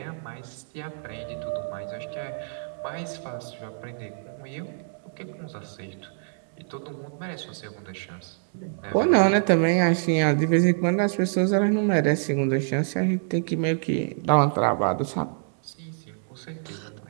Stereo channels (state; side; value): silent; left; digital silence